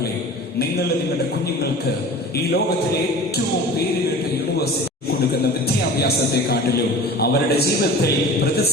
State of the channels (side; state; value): both; normal; correlation 0.39